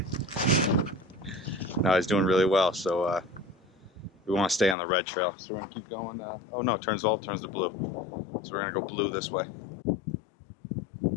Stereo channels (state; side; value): drops out; right; at 4.8 s